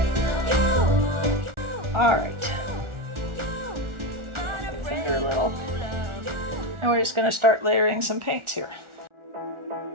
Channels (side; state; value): left; late; 1.4 ms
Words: All right. Finger a little. And we're just going to start layering some paints here.